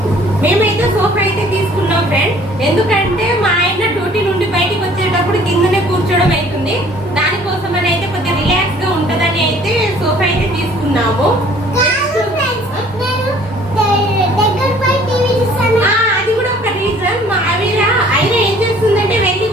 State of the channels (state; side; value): normal; both; correlation 0.55